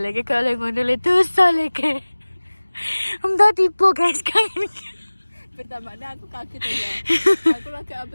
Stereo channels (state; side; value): inverted; both; correlation -1.00